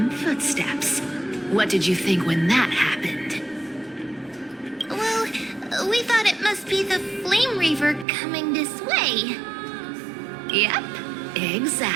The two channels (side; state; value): left; drops out; at 8.1 s